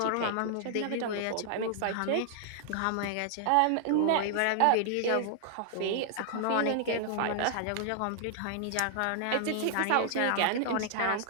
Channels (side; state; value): both; different; correlation -0.01